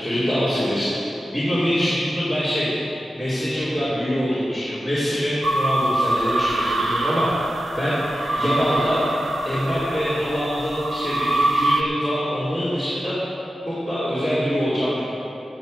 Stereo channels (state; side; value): normal; both; correlation 0.91